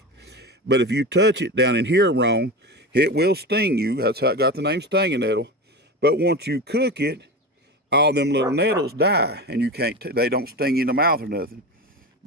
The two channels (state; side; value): normal; both; correlation 0.25